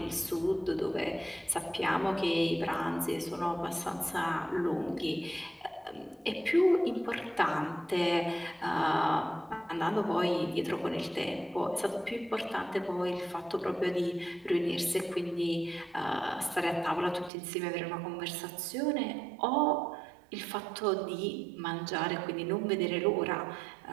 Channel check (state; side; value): drops out; left; at 17.3 s